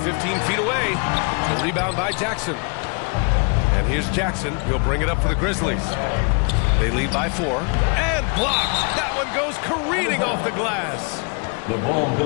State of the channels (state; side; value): quieter; right; 35.3 dB